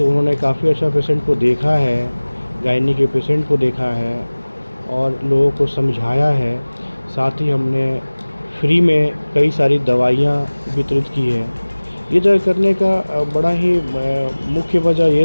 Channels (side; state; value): both; inverted; correlation -1.00